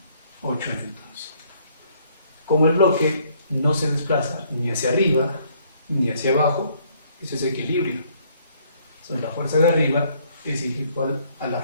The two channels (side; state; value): both; inverted; correlation -0.65